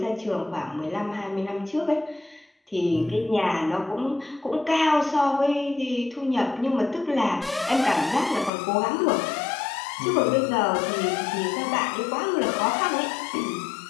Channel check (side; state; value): right; drops out; at 8.5 s